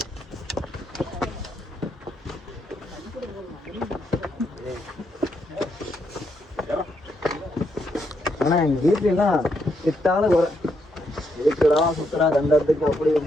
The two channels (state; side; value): normal; both; correlation 0.78